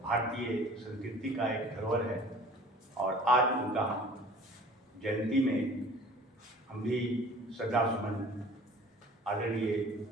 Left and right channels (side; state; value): both; normal; correlation 0.47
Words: भारतीय संस्कृति का एक धरोहर है। और आज उनका हम जयंती में हम भी श्रद्धा सुमन आदरणीय